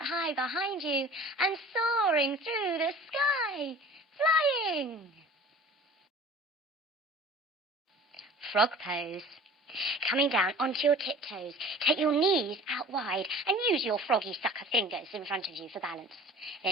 high behind you and soaring through the sky, flying. Frog pose. Coming down onto your tiptoes, take your knees out wide and use your froggy sucker fingers in front of you for balance.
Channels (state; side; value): normal; both; correlation 0.43